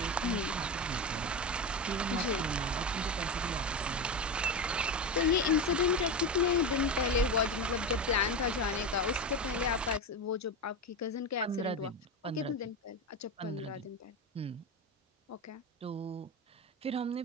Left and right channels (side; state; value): both; normal; correlation 0.18